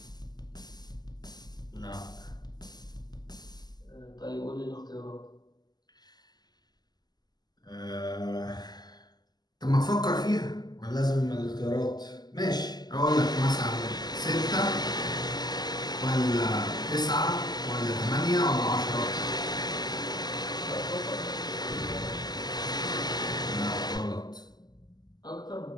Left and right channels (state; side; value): late; right; 0.20 ms